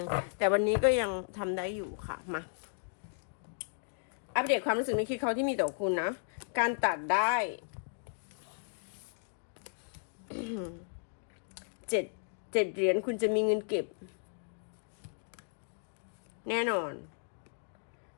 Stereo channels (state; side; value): silent; right; digital silence